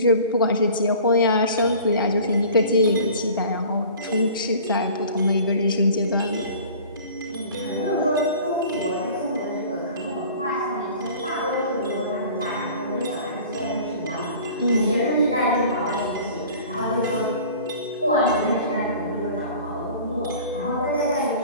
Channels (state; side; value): inverted; both; correlation -0.45